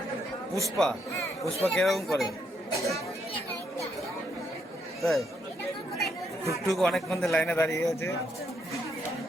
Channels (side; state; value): both; normal; correlation 0.75